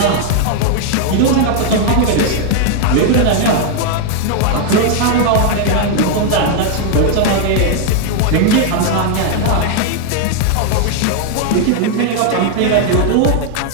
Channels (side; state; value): both; different; correlation 0.00